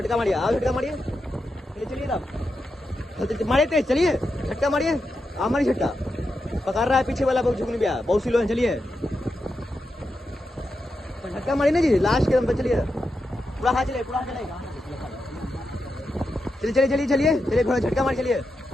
मारिए, आओ झटका मारिए, चलिए चलिए तब मारिए तेज, चलिए झटका मारिए, आप मारिए झटका, पकड़ रहा है पीछे वाला, बहुत झुकने गया, बहुत स्लो है, चलिए झटका मारिए ना जी लास्ट के दम पे, चलिए पूरा हाथ चलिए, पूरा हाथ चलेगा, चलिए चलिए चलिए चलिए चलिए थोड़ा झटका मार, चलिए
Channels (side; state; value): both; normal; correlation 0.87